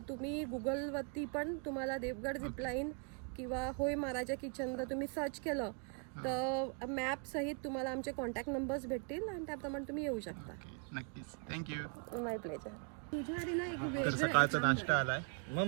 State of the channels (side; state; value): left; quieter; 37.7 dB